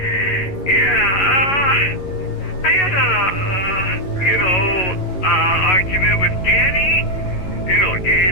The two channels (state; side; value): late; right; 11 ms